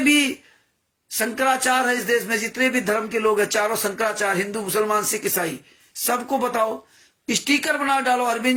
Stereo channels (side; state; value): both; identical; correlation 1.00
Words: भी शंकराचार्य है इस देश में, जितने भी धर्म के लोग हैं, चारों शंकराचार्य, हिंदू, मुसलमान, सिख, ईसाई, सबको बताओ, स्टिकर बना डालो।